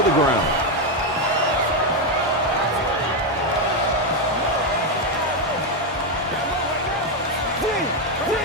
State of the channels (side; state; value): both; normal; correlation 0.05